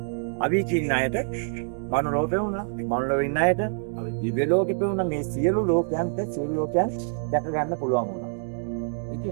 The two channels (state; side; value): silent; left; digital silence